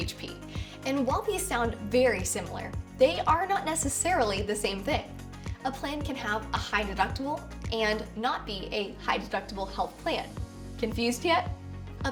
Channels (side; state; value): both; identical; correlation 1.00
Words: And while these sound very similar, they are not necessarily the same thing. A plan can have a high deductible and not be a high deductible health plan. Confused yet? A